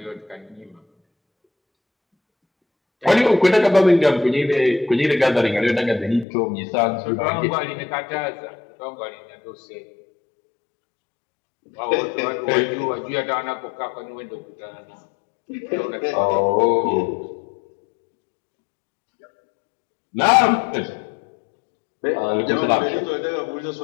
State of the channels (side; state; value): right; drops out; at 6.2 s